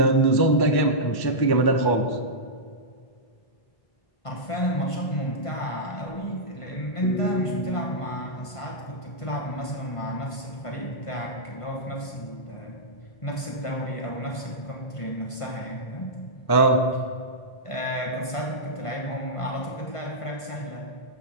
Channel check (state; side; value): late; right; 1.5 ms